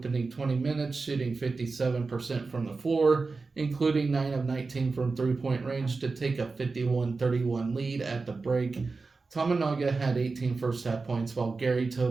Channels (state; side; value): quieter; left; 4.1 dB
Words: 20 minutes, shooting 57% from the floor, including 9 of 19 from three-point range to take a 51-31 lead at the break. Tominaga had 18 first-half points, while Gary